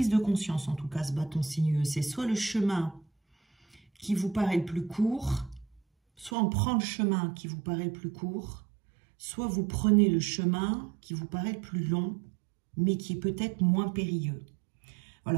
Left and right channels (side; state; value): left; drops out; at 6.3 s